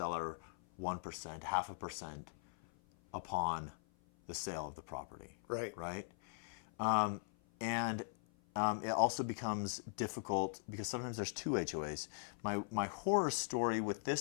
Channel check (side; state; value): right; silent; 51 dB below the other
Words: 1%, 0.5% upon the sale of the property. Right. Right? It also becomes difficult because sometimes there's 2 HOAs. My horror story with